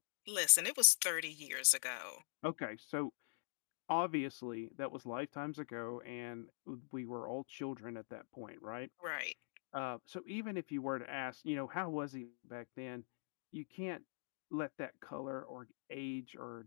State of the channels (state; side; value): silent; right; digital silence